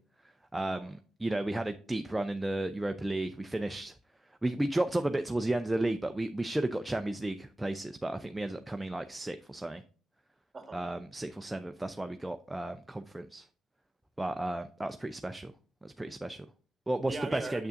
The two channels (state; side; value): normal; both; correlation 0.97